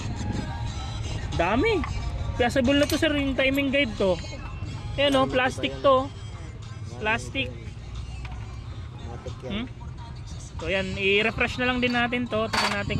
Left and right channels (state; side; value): identical; both; correlation 1.00